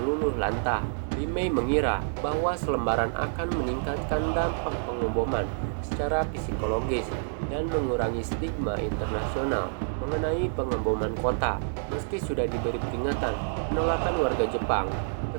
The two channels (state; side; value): silent; left; 55 dB below the other